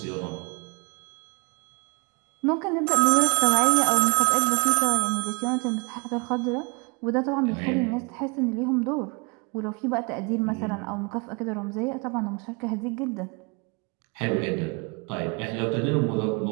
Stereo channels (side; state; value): left; quieter; 30.9 dB